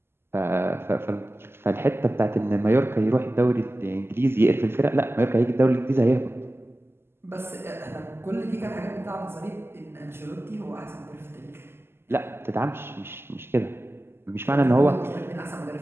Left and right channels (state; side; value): late; left; 0.12 ms